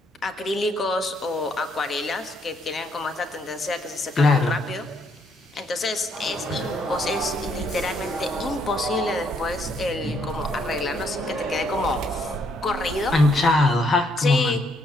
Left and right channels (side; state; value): both; normal; correlation 0.71